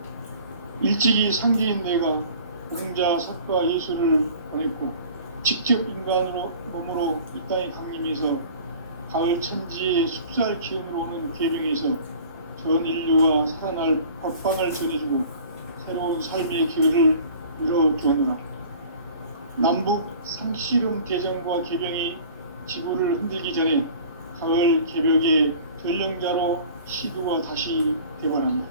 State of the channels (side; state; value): both; inverted; correlation -0.46